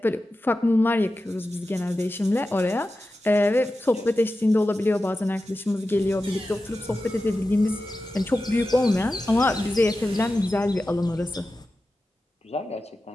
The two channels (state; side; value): normal; both; correlation 0.93